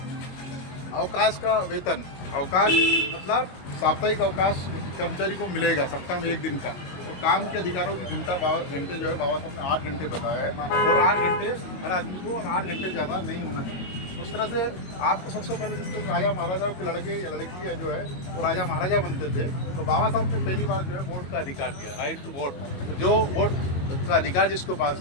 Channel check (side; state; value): right; late; 22 ms